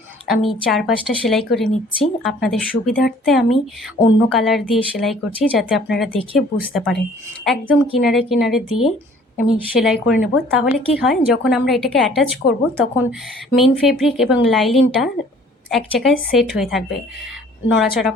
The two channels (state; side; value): normal; both; correlation 0.54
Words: আমি 4-5টা সেলাই করে নিচ্ছি। আপনাদের সুবিধার্থে আমি অন্য কালার দিয়ে সেলাই করছি, যাতে আপনারা দেখে বুঝতে পারেন। একদম কিনারে কিনারে দিয়ে আমি সেলাই করে নেব। তাহলে কি হয়, যখন আমরা এটাকে অ্যাটাচ করব তখন মেন ফেব্রিক এবং লাইলিনটা এক জায়গায় সেট হয়ে থাকবে, নড়াচড়া